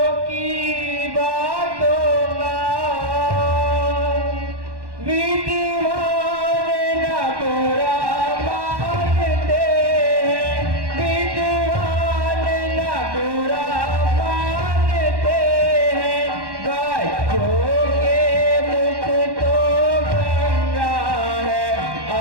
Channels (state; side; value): late; left; 1.1 ms